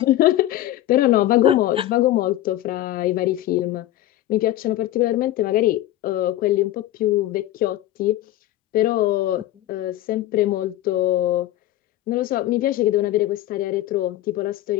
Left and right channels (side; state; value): right; quieter; 14.3 dB